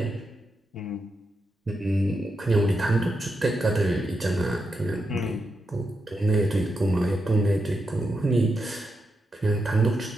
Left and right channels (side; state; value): both; normal; correlation 0.85